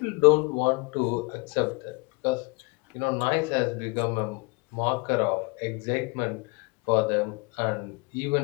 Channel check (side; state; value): right; quieter; 28.8 dB